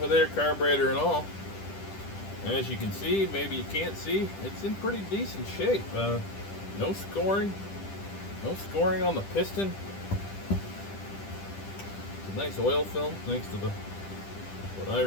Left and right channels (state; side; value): late; right; 10 ms